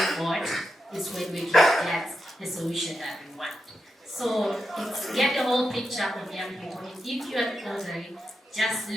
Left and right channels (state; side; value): normal; both; correlation 0.87